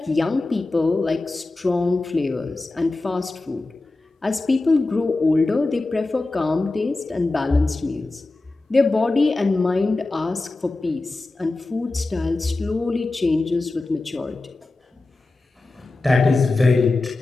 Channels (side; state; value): right; quieter; 3.2 dB